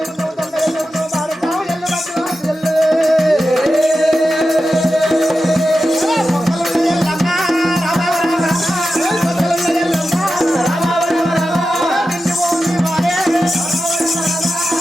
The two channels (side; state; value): both; normal; correlation 0.92